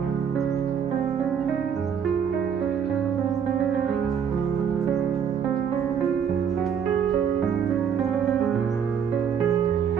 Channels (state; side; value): quieter; left; 7.7 dB